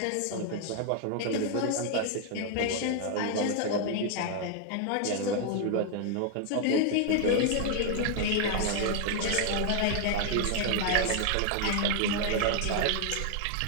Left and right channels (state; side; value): different; both; correlation 0.00